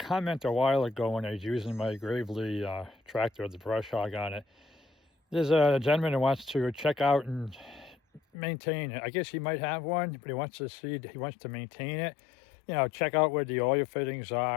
a while ago when I was using my Gravely tractor with the brush hog on it. There's a gentleman who wants to check out and maintain it. I guess he might have one, but he wants to maintain it. You know, check out where the oil fittings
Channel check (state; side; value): drops out; right; at 8.2 s